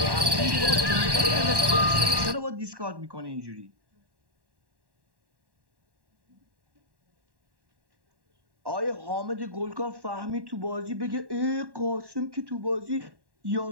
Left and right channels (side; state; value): left; late; 1.1 ms